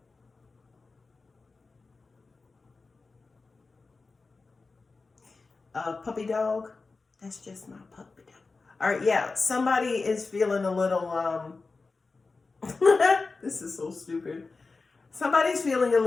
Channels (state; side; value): quieter; right; 4.0 dB